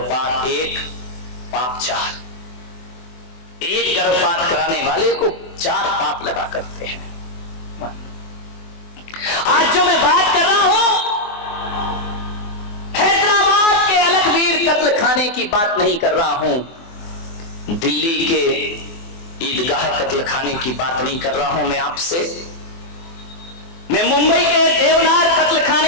1 पाप 4। एक गर्भपात कराने वाले को 4 पाप लगा करते हैं। आज जो मैं बात कर रहा हूं, हैदराबाद के अलकबीर कत्ल खाने की बात नहीं कर रहा हूं, दिल्ली के ईदगाह कत्ल खाने की बात नहीं कर रहा हूं मैं आपसे, मैं मुंबई के देवनार कत्ल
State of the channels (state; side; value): late; right; 24 ms